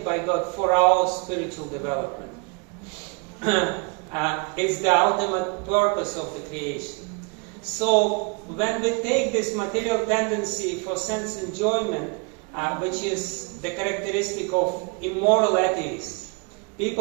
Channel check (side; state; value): left; quieter; 32.3 dB